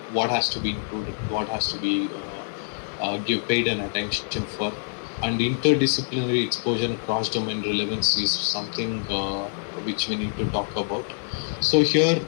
what has to be included, what has to be give paid an attention for, and interdisciplinary exposure and cross-domain relevance is something which we need to talk about. So here,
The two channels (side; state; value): right; silent; 61 dB below the other